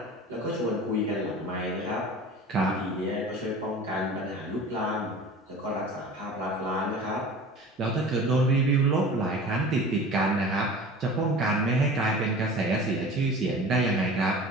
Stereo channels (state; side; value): normal; both; correlation 0.39